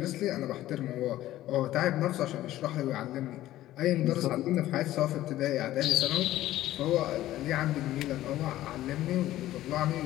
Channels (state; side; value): quieter; right; 14.6 dB